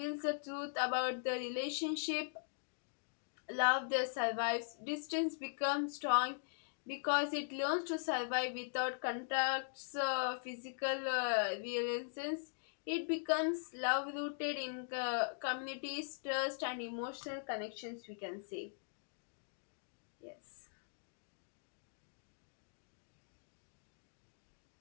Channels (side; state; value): right; silent; digital silence